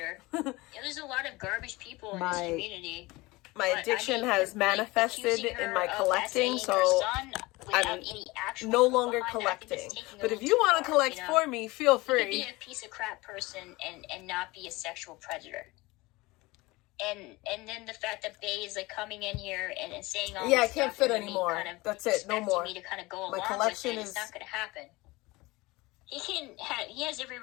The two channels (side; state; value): right; quieter; 21.9 dB